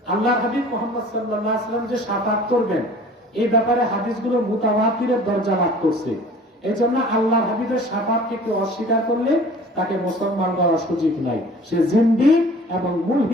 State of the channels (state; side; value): normal; both; correlation 0.47